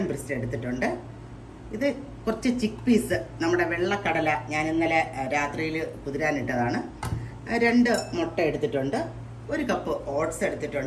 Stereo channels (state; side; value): identical; both; correlation 1.00